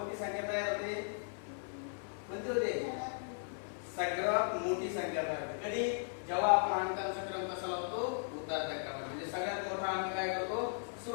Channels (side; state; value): right; silent; 53 dB below the other